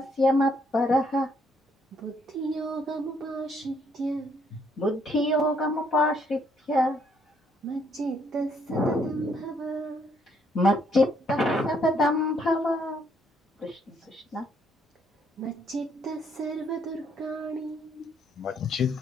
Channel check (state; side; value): normal; both; correlation 0.69